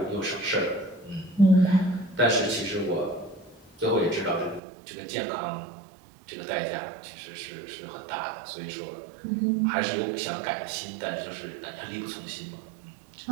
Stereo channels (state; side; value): drops out; left; at 4.6 s